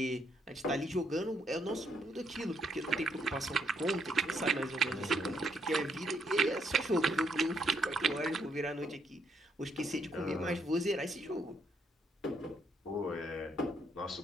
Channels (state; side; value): normal; both; correlation 0.73